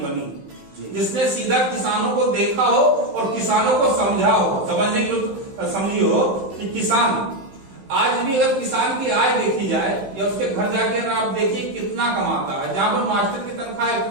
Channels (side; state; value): left; late; 15 ms